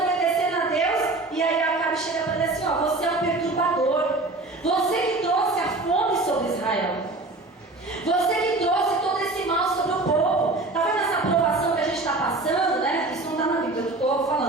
a Deus, e aí Acabe chega para ele assim, você é um perturbador. Você que trouxe a fome sobre Israel. Você que trouxe todo esse mal sobre o povo. Está vendo essa aprovação que a gente está passando, né? Isso não está na Bíblia, eu estou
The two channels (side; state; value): left; quieter; 3.1 dB